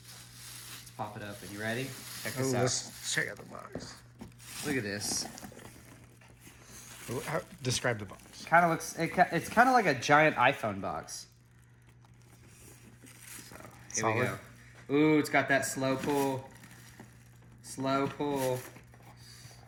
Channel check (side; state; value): both; identical; correlation 1.00